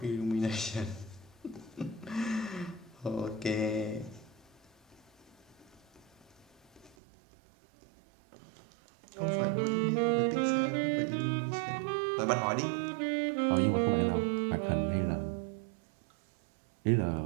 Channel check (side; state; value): left; drops out; at 7.0 s